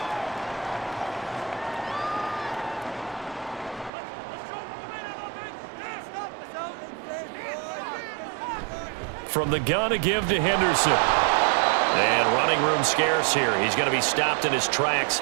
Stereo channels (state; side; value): drops out; left; at 3.9 s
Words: From the gun to give to Henderson. And running room scarce here. He's going to be stopped in his tracks